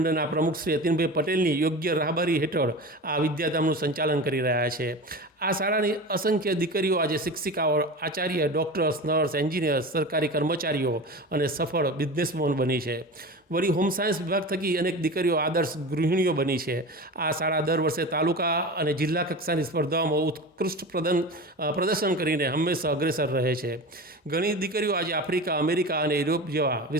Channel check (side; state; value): both; normal; correlation 0.30